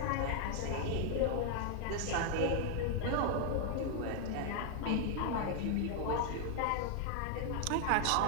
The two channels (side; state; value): both; different; correlation 0.00